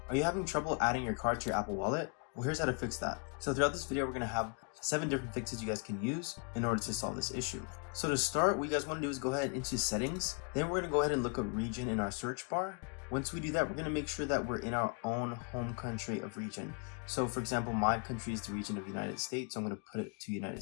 Are you having trouble adding your card to your Apple Wallet? Well, here's how to fix that. So throughout this video, we're going to have 7 different fixes you guys can use in order to solve this issue. So to start, what you guys want to do is go ahead into settings. Then we're going to go ahead and look up region in our search bar. Once we do that, we're going to make sure that we're in our own home country of region. So for example, my country is the region of United States. So I'm going to put it to United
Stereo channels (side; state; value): right; quieter; 39.3 dB